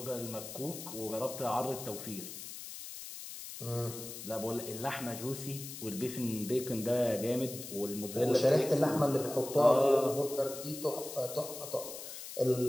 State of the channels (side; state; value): left; noise; hiss, 10 dB below the sound